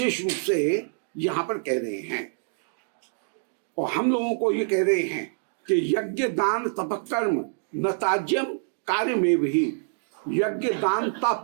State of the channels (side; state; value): left; silent; digital silence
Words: रूप से यहां पर कह रहे हैं। और हम लोगों को ये कह रहे हैं कि यज्ञ दान तप कर्म न ताज्यम कार्य में भी, यज्ञ दान